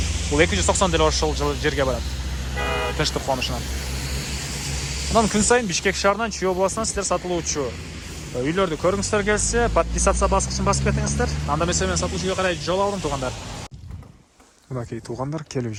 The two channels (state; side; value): identical; both; correlation 1.00